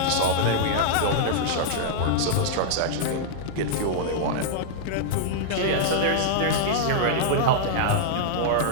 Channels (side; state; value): both; different; correlation -0.02